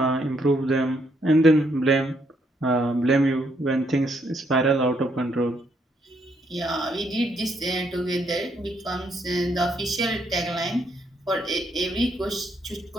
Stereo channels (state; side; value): normal; both; correlation 0.73